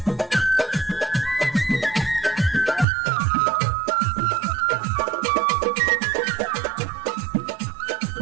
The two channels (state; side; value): drops out; left; at 2.9 s